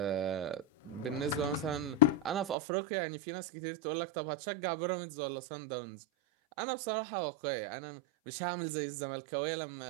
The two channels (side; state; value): left; drops out; at 2.6 s